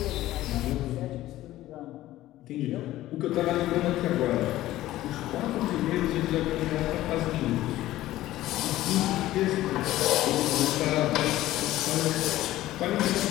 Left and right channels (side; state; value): right; quieter; 15.3 dB